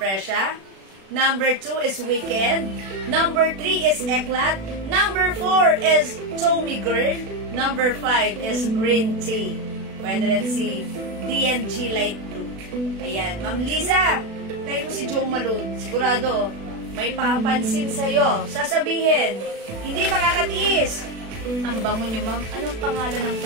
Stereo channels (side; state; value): left; late; 36 ms